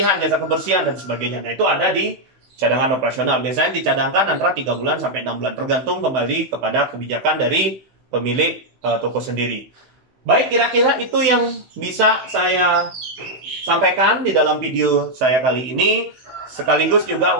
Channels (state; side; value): late; left; 16 ms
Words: jasa kebersihan dan sebagainya. Nah, itu ada di cadangan operasional. Biasanya dicadangkan antara 3 bulan sampai 6 bulan tergantung kembali kepada kebijakan dari pemilik toko sendiri. Baik, kira-kira itu yang bisa saya sampaikan di dalam video saya kali ini, sekaligus